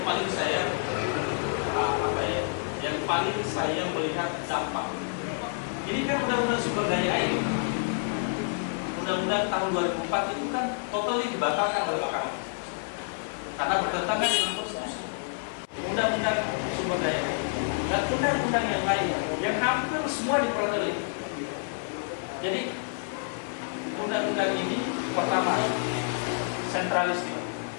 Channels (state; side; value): silent; right; 59 dB below the other